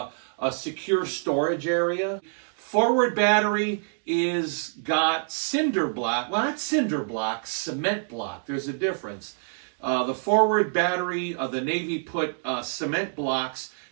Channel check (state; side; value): silent; left; digital silence